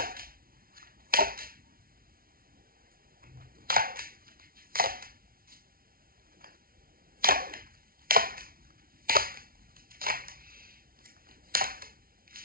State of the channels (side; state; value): left; late; 0.43 ms